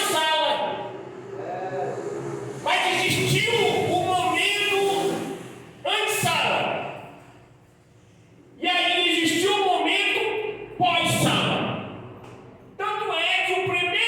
Mas existiu um momento antes-sala, e aí existiu um momento pós-sala. Tanto é que o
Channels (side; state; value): both; identical; correlation 1.00